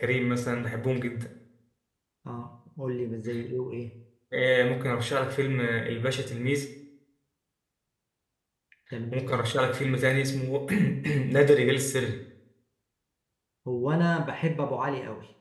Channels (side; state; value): both; identical; correlation 1.00